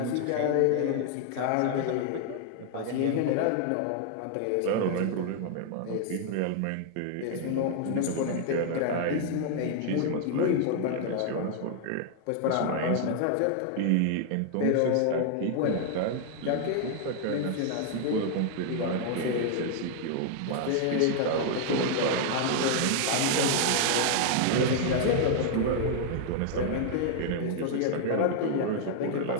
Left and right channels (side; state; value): both; different; correlation 0.00